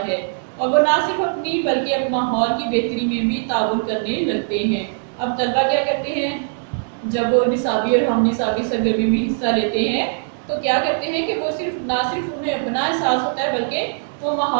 है, और वो ना सिर्फ अपनी बल्कि अपने माहौल की बेहतरी में भी ताउन करने लगते हैं। अब तलबा क्या करते हैं, जब वो निसाबी और हम निसाबी सरगर्मी में हिस्सा लेते हैं तो क्या करते हैं कि वो ना सिर्फ उन्हें अपना एहसास होता है बल्कि वो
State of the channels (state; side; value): silent; left; digital silence